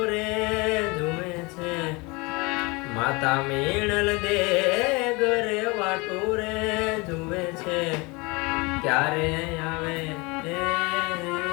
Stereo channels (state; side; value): quieter; right; 26.3 dB